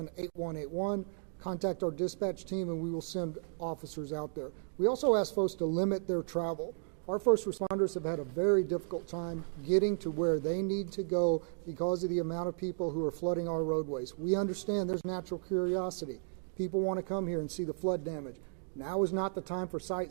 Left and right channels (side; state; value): left; silent; digital silence